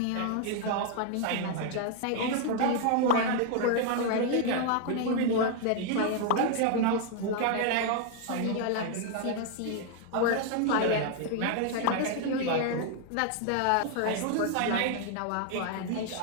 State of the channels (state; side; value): different; both; correlation 0.00